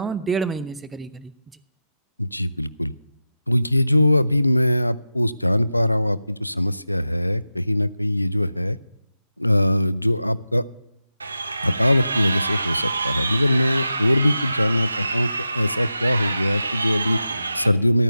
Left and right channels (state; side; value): inverted; both; correlation -0.91